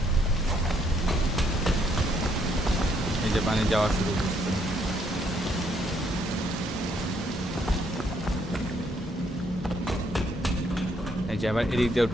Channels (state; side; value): normal; both; correlation 0.71